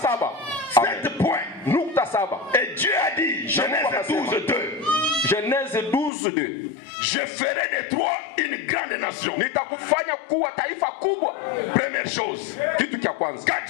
7 points. Nukta saba. Et Dieu a dit, Genèse 12, 2. Genèse 12:2. Je ferai de toi une grande nation. Nitakufanya kuwa taifa kubwa. Première chose. Kitu cha kwanza. Quand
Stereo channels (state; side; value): drops out; right; at 6.1 s